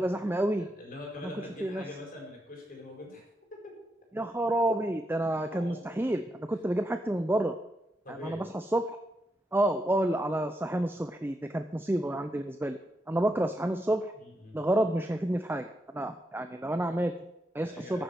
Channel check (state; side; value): normal; both; correlation 0.83